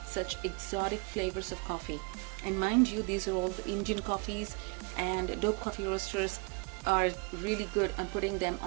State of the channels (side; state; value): left; quieter; 32.5 dB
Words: such exotic flavors of coffee. And mind you, these are all the Indian coffees, and Dope Coffee Roasters are really good on putting them